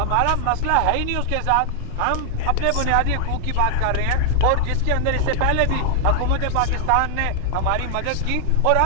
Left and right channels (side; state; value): both; different; correlation 0.00